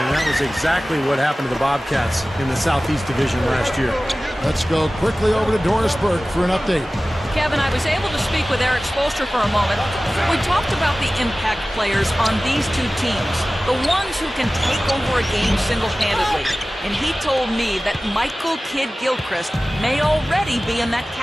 that was exactly what happened to the Bobcats in the Southeast Division last year. Let's go quickly over to Doris Burke for an update. Kevin, I was able to speak with Eric Spoelstra for a moment. We talked about the impact players on these two teams, the ones who can take over a game single-handedly. And he told me that Michael Kidd-Gilchrist may already be in that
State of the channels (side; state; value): both; normal; correlation 0.97